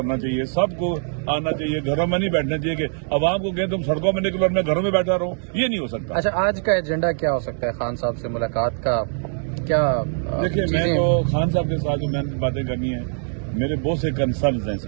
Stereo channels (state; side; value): silent; left; 64 dB below the other